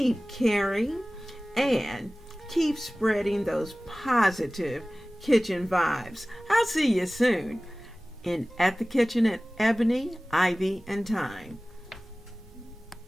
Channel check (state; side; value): normal; both; correlation 0.98